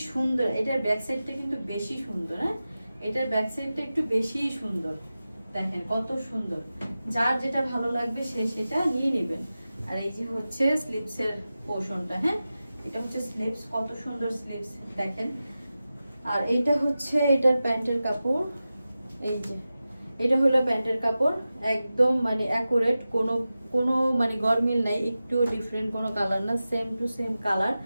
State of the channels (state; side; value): inverted; both; correlation -0.94